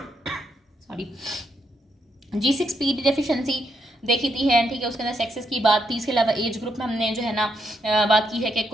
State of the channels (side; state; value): both; normal; correlation 0.78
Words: सॉरी G6PD डेफिशिएंसी, देखी थी है, ठीक है, उसके अंदर सेक्सेस की बात थी। इसके अलावा एज ग्रुप में हमने जो है ना बात की है कि